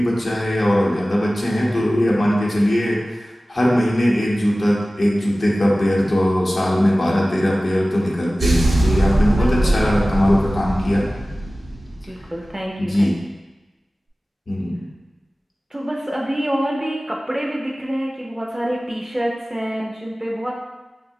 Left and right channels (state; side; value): normal; both; correlation 0.97